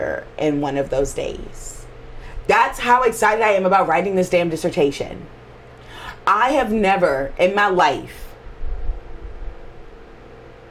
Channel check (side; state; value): both; identical; correlation 1.00